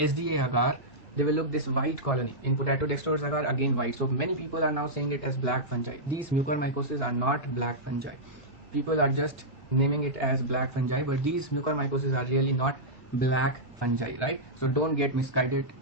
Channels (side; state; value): both; normal; correlation -0.10